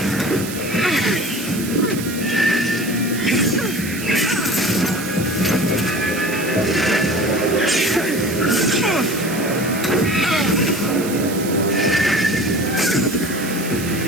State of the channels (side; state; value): right; noise; hiss, 10 dB below the sound